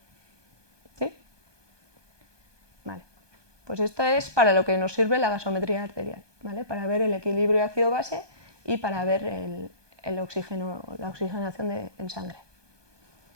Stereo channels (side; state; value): left; late; 1.2 ms